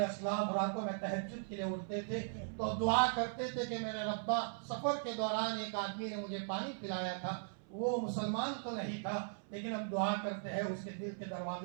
اسلاف راتوں میں تہجد کے لیے اٹھتے تھے تو دعا کرتے تھے کہ میرے ربا، سفر کے دوران ایک آدمی نے مجھے پانی پلایا تھا، وہ مسلمان تو نہیں تھا لیکن اب دعا کرتے ہیں اس کے دل کے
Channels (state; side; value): silent; left; 52 dB below the other